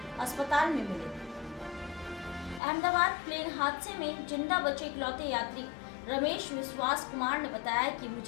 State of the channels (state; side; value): drops out; right; at 2.6 s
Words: अस्पताल में मिले। अहमदाबाद प्लेन हादसे में जिंदा बचे इकलौते यात्री रमेश विश्वास कुमार ने बताया कि